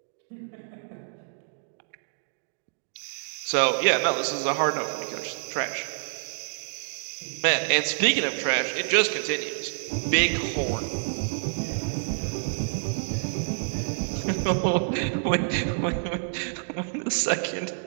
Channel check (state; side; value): silent; left; digital silence